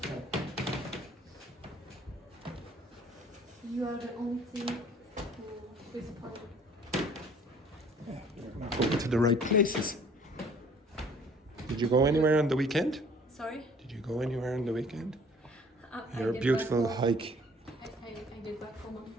You are the only thing who is part. You're not going to the right places. Did you go anywhere on the weekend? Sorry? Did you go anywhere on the weekend? I Your get beautiful back home. hike. I get back home on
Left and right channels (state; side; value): normal; both; correlation 0.54